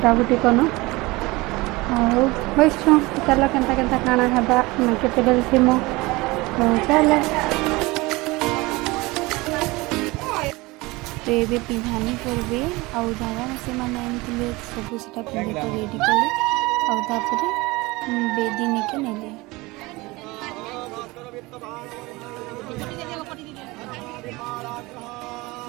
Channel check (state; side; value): quieter; left; 22.4 dB